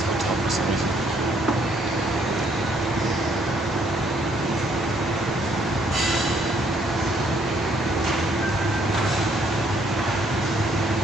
hotel for some reason.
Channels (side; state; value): both; normal; correlation 0.67